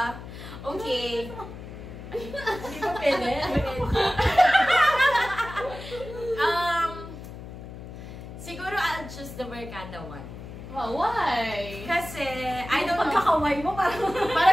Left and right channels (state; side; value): noise; left; hum, 12 dB below the sound